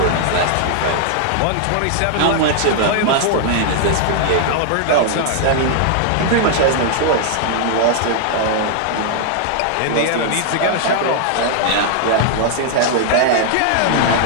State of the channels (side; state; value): both; different; correlation -0.01